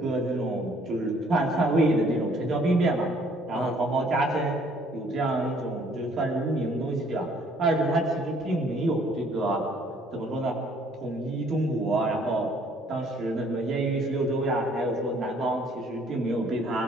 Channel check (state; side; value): normal; both; correlation 0.61